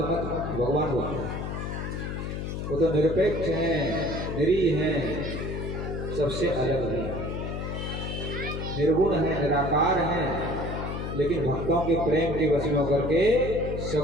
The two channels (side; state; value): left; noise; hum, 4 dB below the sound